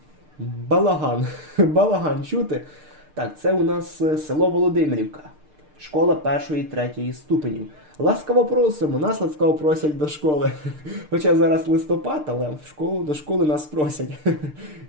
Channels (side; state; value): left; late; 6.6 ms